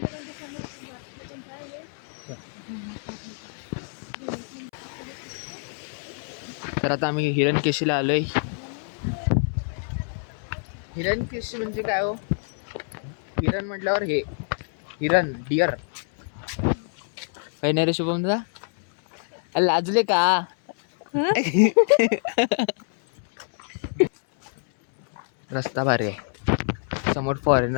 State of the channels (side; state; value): right; silent; 61 dB below the other